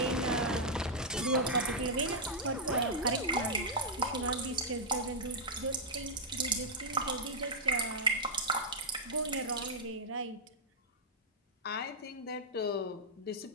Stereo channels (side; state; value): both; normal; correlation -0.06